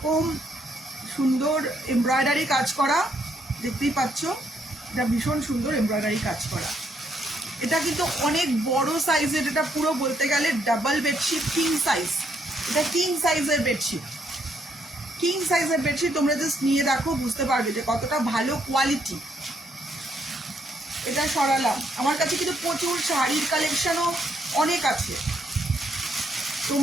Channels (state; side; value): normal; both; correlation 0.73